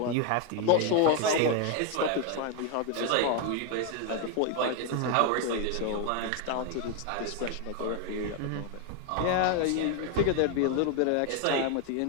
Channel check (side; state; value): both; different; correlation 0.01